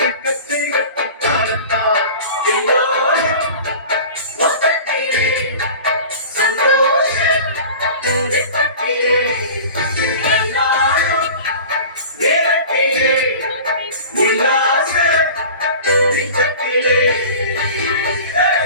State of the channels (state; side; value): inverted; both; correlation -0.38